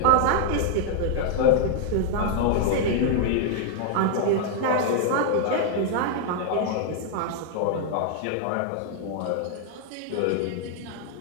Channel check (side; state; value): both; different; correlation 0.00